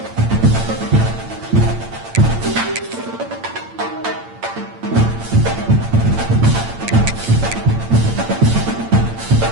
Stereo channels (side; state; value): left; late; 8.9 ms